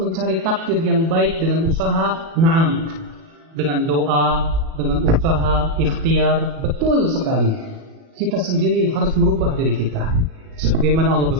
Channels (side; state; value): left; late; 37 ms